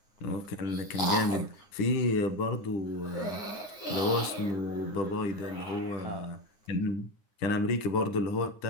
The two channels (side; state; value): right; late; 9.6 ms